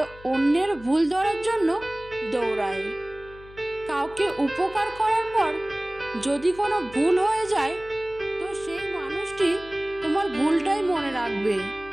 অন্যের ভুল ধরার জন্য দৌড়ায়। কাউকে উপকার করার পর যদি কোনো ভুল হয়ে যায়, তো সেই মানুষটি তোমার ভুলটাই মনে রাখবে,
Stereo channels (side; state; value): left; noise; hum, 20 dB below the sound